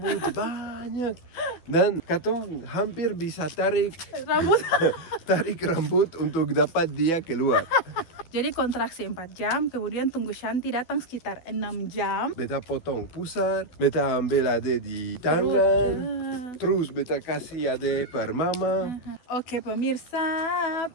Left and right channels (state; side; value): late; right; 12 ms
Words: banyak dan katong hampir bisa tarik rambut untuk dapat dia keluar. Jadi kontraksi 4 jam, kemudian tunggu Shanti datang sekitar 6 jam. Beta potong pusar, beta ambil Ade di tangan, terus beta kasih Ade per mama. Oke pemirsa,